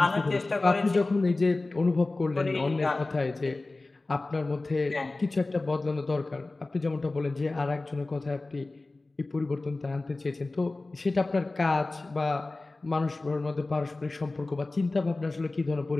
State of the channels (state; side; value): quieter; right; 3.2 dB